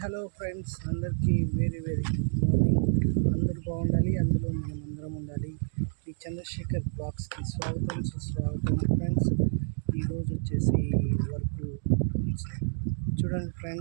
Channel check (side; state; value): left; silent; digital silence